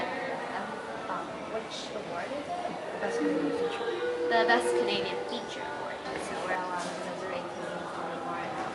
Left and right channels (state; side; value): identical; both; correlation 1.00